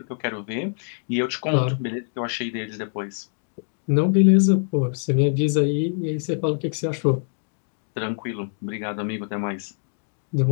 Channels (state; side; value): silent; right; 62 dB below the other